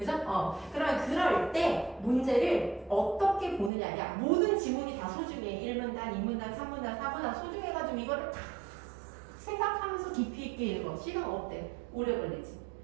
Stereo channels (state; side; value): drops out; left; at 3.7 s